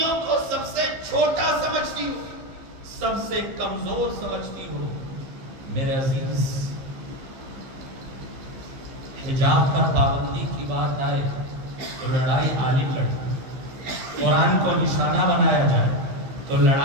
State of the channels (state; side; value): late; left; 15 ms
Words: کو سب سے چھوٹا سمجھتی ہو، سب سے کمزور سمجھتی ہو، میرے عزیز حجاب پر پابندی کی بات آئے تو لڑائی عالم لڑے، قرآن کو نشانہ بنایا جائے تو